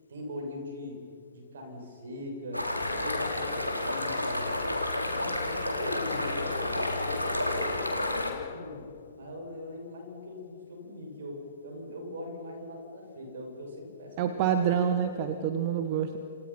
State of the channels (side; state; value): both; inverted; correlation -0.56